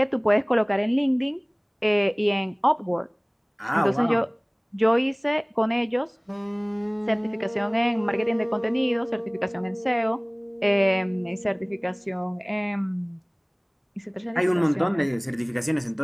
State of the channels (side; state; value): both; identical; correlation 1.00